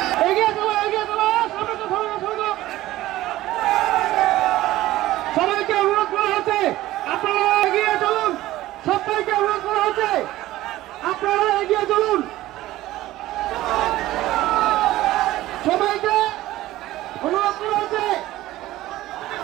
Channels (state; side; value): quieter; left; 16.0 dB